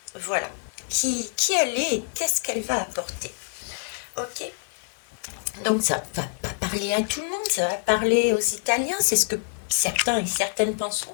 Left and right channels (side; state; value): right; silent; 61 dB below the other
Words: Voilà. Qui elle est et qu'est-ce qu'elle va apporter? Ok. Donc ça va pas parler à tout le monde, ça va parler aux Italiens, c'est ce que certains et certaines